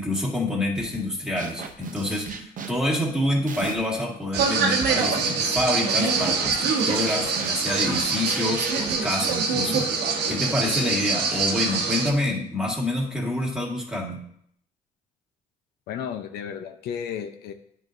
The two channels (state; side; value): normal; both; correlation 0.43